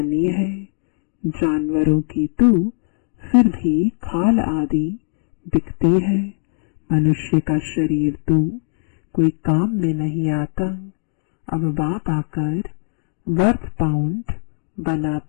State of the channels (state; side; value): silent; right; digital silence